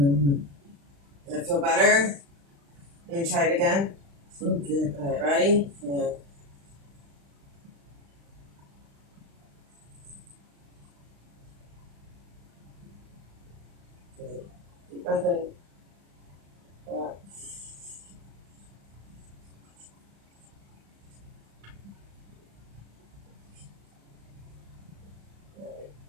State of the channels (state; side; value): late; left; 35 ms